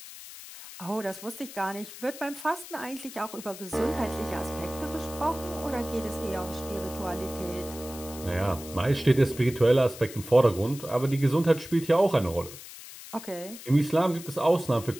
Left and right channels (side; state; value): left; noise; hiss, 14 dB below the sound